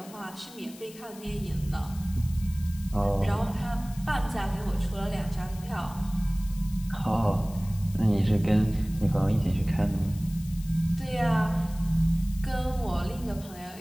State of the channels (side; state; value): left; noise; hiss, 19 dB below the sound